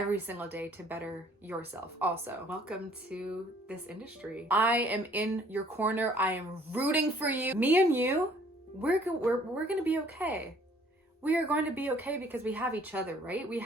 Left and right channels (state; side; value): normal; both; correlation 0.58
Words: single day to better yourself also. Welcome to this industry. I am in your corner. I am rooting for you. Me and you, we're gonna be okay. We are going to be okay because we have each other, right? We